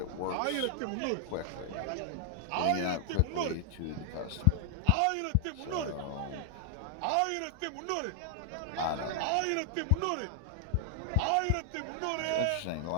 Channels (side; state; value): both; different; correlation 0.00